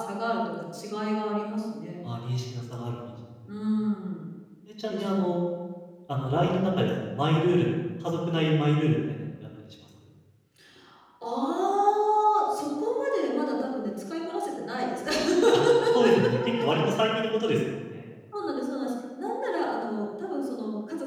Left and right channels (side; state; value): both; identical; correlation 1.00